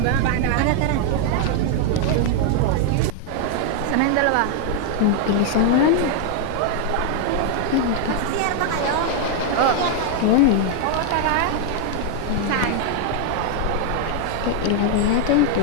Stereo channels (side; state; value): both; different; correlation 0.00